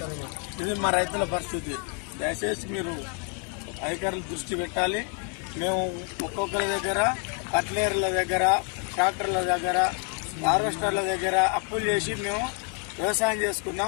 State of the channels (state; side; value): quieter; right; 36.3 dB